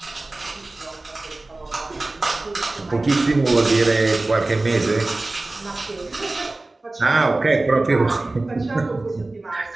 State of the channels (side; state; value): left; quieter; 3.0 dB